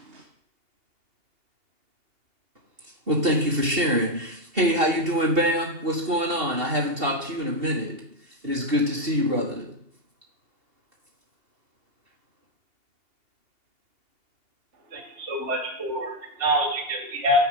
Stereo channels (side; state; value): left; late; 2.7 ms